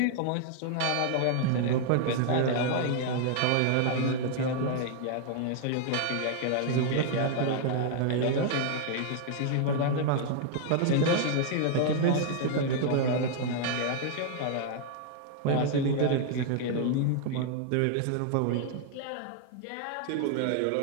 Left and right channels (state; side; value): different; both; correlation 0.00